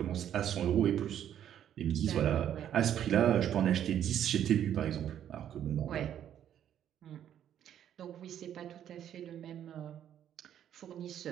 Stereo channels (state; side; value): quieter; left; 10.2 dB